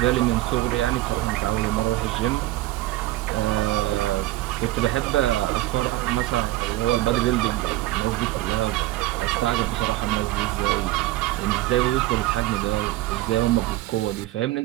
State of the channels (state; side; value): quieter; left; 17.0 dB